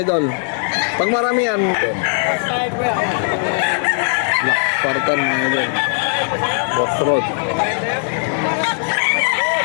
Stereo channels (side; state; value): right; silent; digital silence